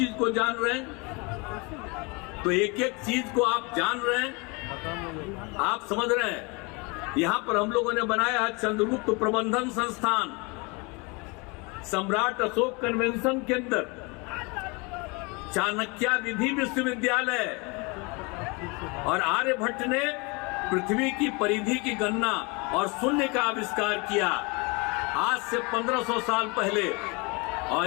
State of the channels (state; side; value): quieter; right; 28.8 dB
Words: को जान रहे हैं। तो एक एक चीज को आप जान रहे हैं, आप समझ रहे हैं। यहाँ पर हम लोगों ने बनाया है चंद्रगुप्त प्रबंधन संस्थान, सम्राट अशोक कन्वेंशन के अंदर, चाणक्य विधि विश्वविद्यालय, और आर्यभट्ट ने पृथ्वी की परिधि की गणना और शून्य का आविष्कार किया आज से 1500 साल पहले।